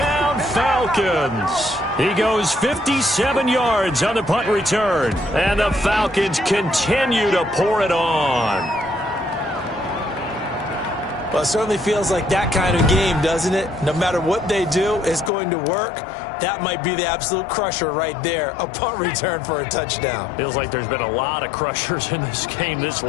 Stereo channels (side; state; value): right; drops out; at 15.3 s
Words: Falcons. He goes 57 yards on the punt return. And the Falcons continue to pour it on. Well, it certainly feels like that kind of game, doesn't it? No matter what they do, it's going to work. That might be the absolute crusher right there. A punt return for a touchdown. Feels like there's been a lot of crushers in this game. This